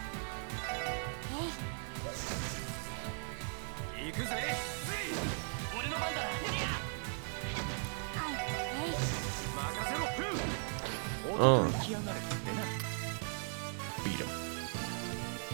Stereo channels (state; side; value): silent; left; 52 dB below the other